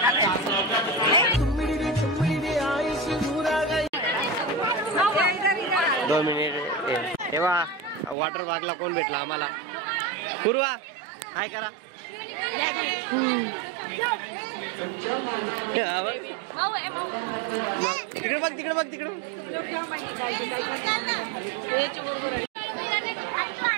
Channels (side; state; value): left; drops out; at 8.2 s